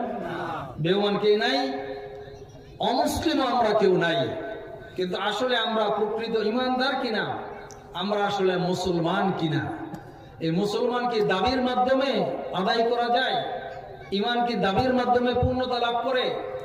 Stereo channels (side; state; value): both; identical; correlation 1.00